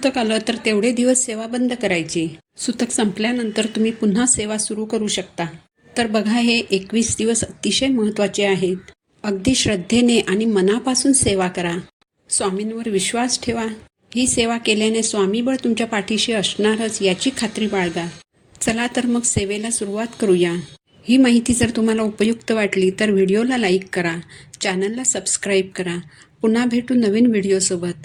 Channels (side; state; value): both; identical; correlation 1.00